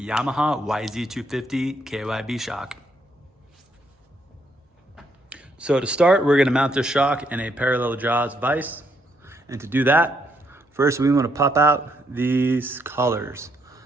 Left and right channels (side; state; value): both; normal; correlation 0.73